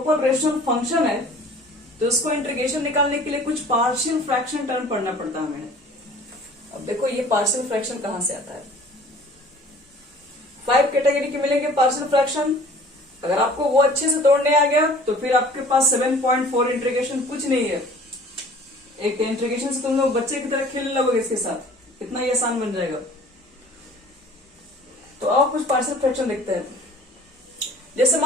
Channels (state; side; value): normal; both; correlation 0.48